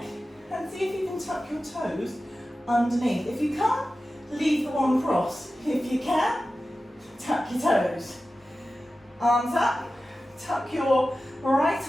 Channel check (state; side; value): normal; both; correlation 0.94